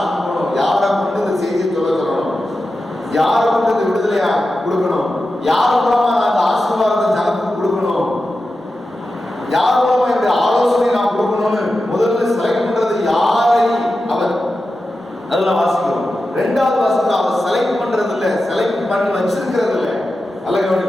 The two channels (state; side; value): normal; both; correlation 0.92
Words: அனுப்பணும், யாரை கொண்டு இந்த செய்தியை சொல்லணும், யாரை கொண்டு இந்த விடுதலையா கொடுக்கணும், யார் மூலமா நான் அந்த ஆசீர்வாதத்தை ஜனத்துக்கு கொடுக்கணும், யார் மூலமா இந்த ஆலோசனை நான் கொடுக்கணும்னு முதல்ல செலக்ட் பண்றது யாரை அவர். அதெல்லாம் வாசிக்கிறோம். ரெண்டாவது வாசிக்கிறோம், அவர் செலக்ட் பண்றது இல்ல, செலக்ட் பண்ணி வச்சிருக்கிறது இல்ல. நல்ல